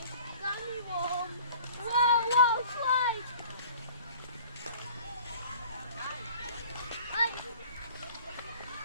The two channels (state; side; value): inverted; both; correlation -0.49